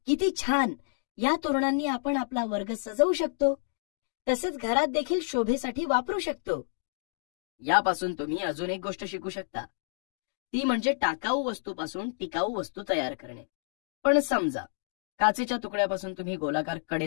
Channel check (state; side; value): silent; right; digital silence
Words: किती छान! या तोरणांनी आपण आपला वर्ग सजवू शकतो. तसेच घरात देखील शोभेसाठी वापरू शकतो. यापासून तुम्ही अजून एक गोष्ट शिकू शकता, ती म्हणजे टाकाऊ वस्तूपासून टिकाऊ वस्तू तयार करणे. पण समजा काचेच्या तुकड्यापासून तुम्ही गोलाकार